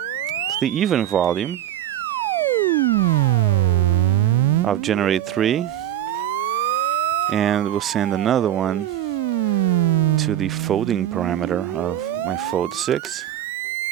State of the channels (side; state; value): left; quieter; 11.8 dB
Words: the even volume of generate 3. And we'll send another one to the folding parameter of my fold 6.